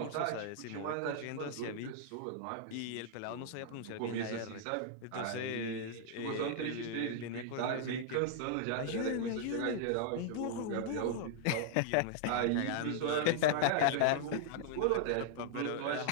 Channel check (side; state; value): both; different; correlation -0.01